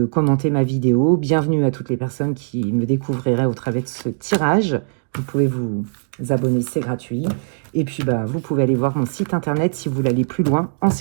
commenter ma vidéo. Bienvenue à toutes les personnes qui me découvriraient au travers de ce tirage. Vous pouvez vous abonner, c'est gratuit. Et puis, bah, vous pouvez aller voir mon site internet si vous voulez aller plus loin en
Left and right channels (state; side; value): silent; left; digital silence